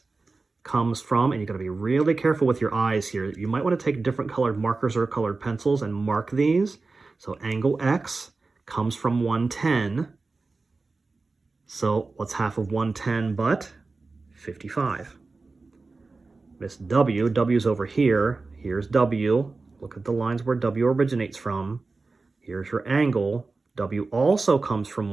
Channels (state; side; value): quieter; left; 3.8 dB